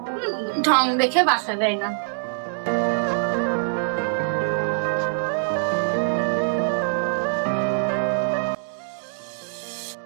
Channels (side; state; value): left; silent; digital silence